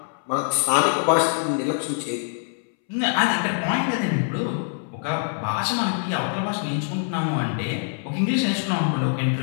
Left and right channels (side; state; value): right; silent; 63 dB below the other